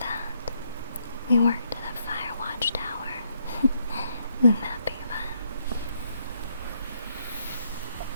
we worked at a fire watch tower. Wouldn't that be fun?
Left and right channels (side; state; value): both; inverted; correlation -0.74